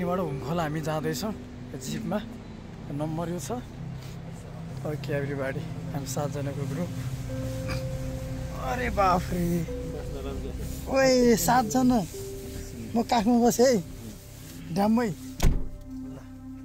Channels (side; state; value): both; identical; correlation 1.00